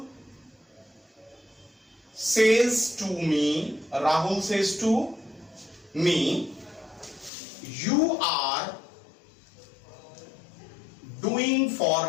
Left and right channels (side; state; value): right; drops out; at 7.3 s